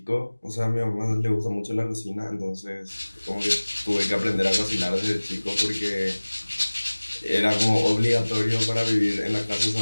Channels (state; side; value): inverted; both; correlation -1.00